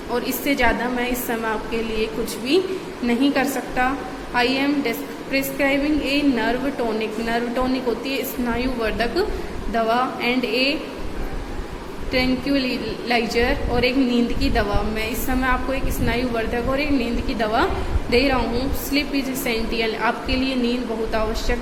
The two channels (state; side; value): identical; both; correlation 1.00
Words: और इससे ज़्यादा मैं इस समय आपके लिए कुछ भी नहीं कर सकता। I am prescribing a nerve tonic होती है स्नायुवर्धक दवा, एंड ए ट्रैंक्विलाइजर, और एक नींद की दवा। मैं इस समय आपको एक स्नायुवर्धक और एक नींद की दवा दे रहा हूँ। स्लीप इज एसेंशियल, आपके लिए नींद बहुत आवश्यक